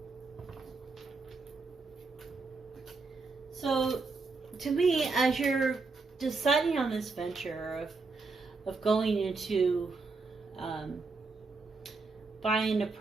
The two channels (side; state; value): left; quieter; 4.1 dB